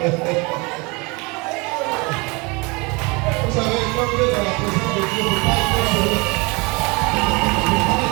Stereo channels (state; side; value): quieter; left; 27.6 dB